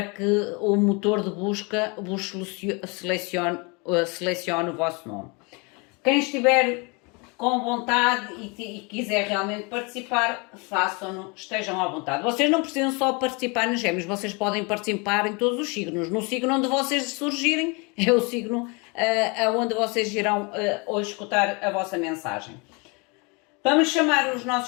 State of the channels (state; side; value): quieter; right; 30.2 dB